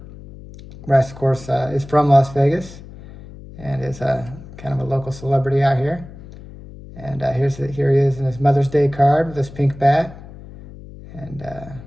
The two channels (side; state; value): left; noise; hum, 17 dB below the sound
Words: Bryce, of course, is from Las Vegas and is kind of a local celebrity out here. And here he is in his Mother's Day card with his pink bat and